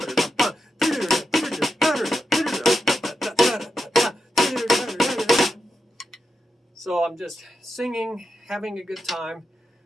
So I'm just singing, having a good time,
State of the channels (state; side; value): normal; both; correlation 0.87